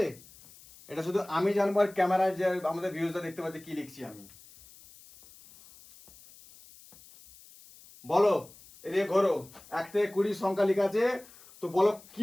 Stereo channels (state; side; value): noise; left; hiss, 22 dB below the sound